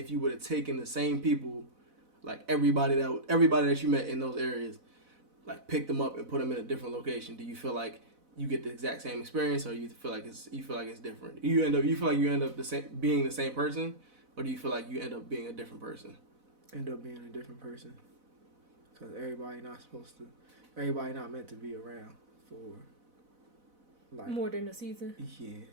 you would have taken the same people, like everybody that you met in those areas, like picked them up and put them in a different location, do you feel like you get the exact same experience, or you feel like it's different? You feel like you end up being the same person, or do you feel like you end up being a different person? End up being a different person, because everybody not meant to be around for like More than a season. Yeah.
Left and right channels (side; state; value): left; late; 4.0 ms